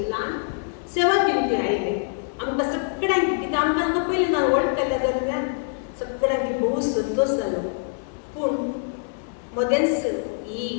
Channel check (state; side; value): silent; right; digital silence